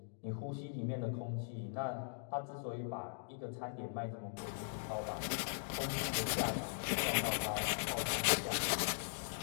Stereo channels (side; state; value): right; silent; digital silence